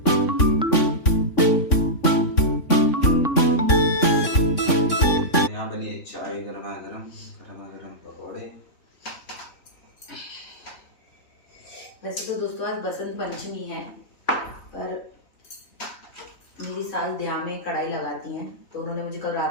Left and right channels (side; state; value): right; late; 3.6 ms